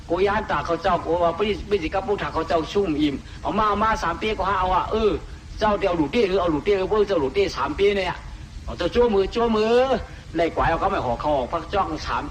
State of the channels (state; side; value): identical; both; correlation 1.00